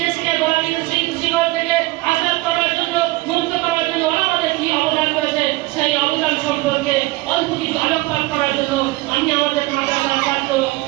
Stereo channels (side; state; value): left; quieter; 20.9 dB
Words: দেশকে গোলামীর শিকড় থেকে আজাদ করার জন্য, মুক্ত করার জন্য ওলামাদের কি অবদান রয়েছে সেই অবদান সম্পর্কে অল্প কিছু আলোকপাত করার জন্য আমি আমাদের মাদ্রাসার ছাত্র